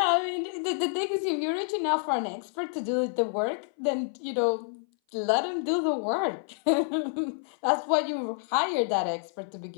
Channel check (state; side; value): silent; right; 58 dB below the other